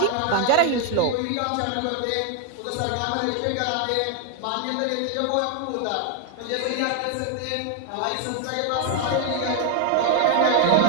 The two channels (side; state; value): both; different; correlation 0.01